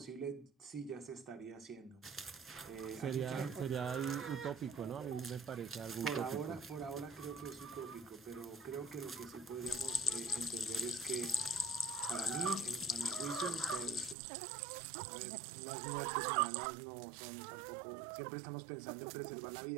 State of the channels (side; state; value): left; drops out; at 14.2 s